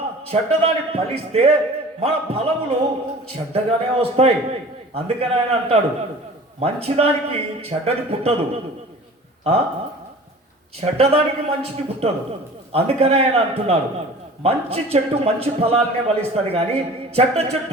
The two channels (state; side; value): normal; both; correlation 0.43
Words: చెడ్డదాన్ని ఫలిస్తే మన ఫలములు చెడ్డగానే వస్తాయి. అందుకని ఆయన అంటాడు, మంచిదానికి చెడ్డది పుట్టదు, చెడ్డదానికి మంచిది పుట్టదు. అందుకనే ఆయన అంటున్నాడు, మంచి చెట్టు మంచి ఫలాలనే ఫలిస్తుంది కానీ చెడ్డ